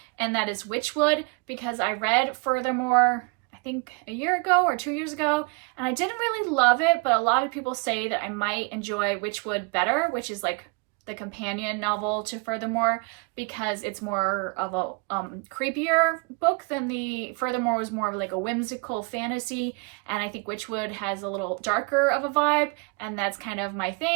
and that is Witchwood, because I read Furthermore, I think a year ago or 2 years ago, and I didn't really love it, but a lot of people say that I might enjoy Witchwood better, which is like the companion novel to Furthermore, because it's more of a creepier book than the Furthermore was more of like a whimsical fantasy, and I think Witchwood has a little darker of a vibe, and that's kind of my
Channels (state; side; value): quieter; left; 31.5 dB